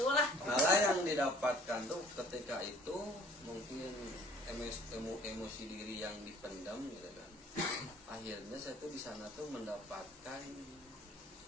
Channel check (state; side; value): normal; both; correlation 0.53